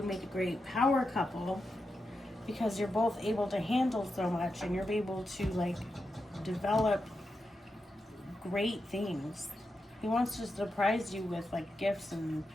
make a great power couple, because you're both able to handle so much, and you're able to like develop great things. He wants to surprise you with like gifts and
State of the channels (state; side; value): normal; both; correlation 0.88